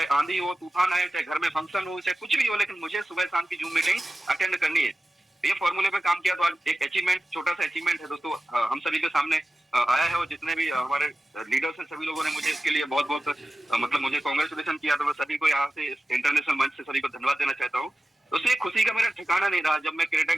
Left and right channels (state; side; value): normal; both; correlation 0.94